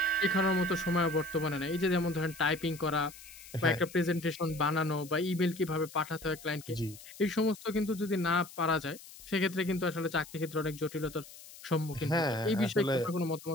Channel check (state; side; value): noise; left; hiss, 18 dB below the sound